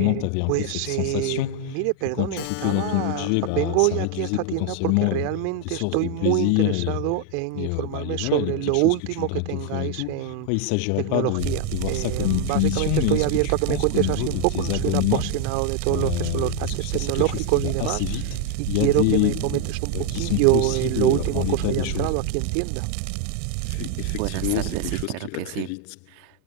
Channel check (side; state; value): both; different; correlation 0.01